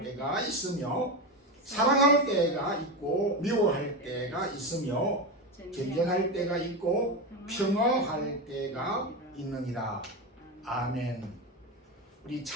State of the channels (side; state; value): both; normal; correlation 0.17